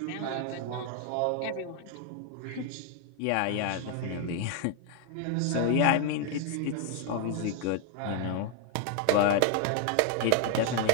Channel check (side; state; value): both; different; correlation 0.00